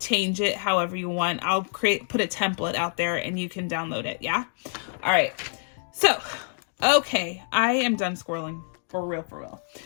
it however you want. I'll put a template out there and you can download it. Yeah. All right. So, okay. I am done squirreling. For real, for real.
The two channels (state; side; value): silent; right; digital silence